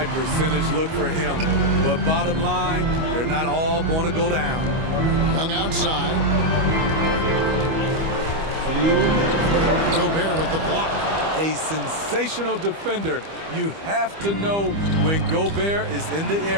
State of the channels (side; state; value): left; late; 25 ms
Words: percentage look for him. But bottom line, they're not all going to go down. Young outside. Gobert with the block. A sensational defender. You have to know when Gobert is in the